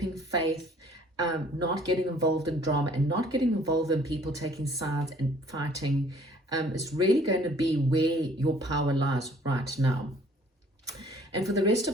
faith, not getting involved in drama and not getting involved in people taking sides and fighting. It's really going to be where your power lies right now. And for the rest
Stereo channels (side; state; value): both; normal; correlation 0.57